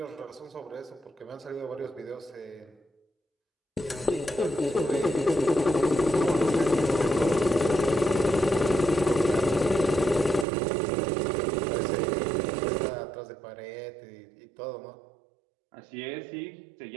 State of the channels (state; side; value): drops out; left; at 10.5 s